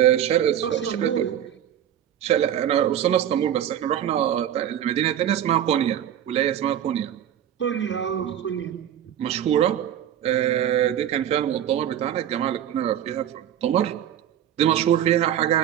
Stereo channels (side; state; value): left; quieter; 10.5 dB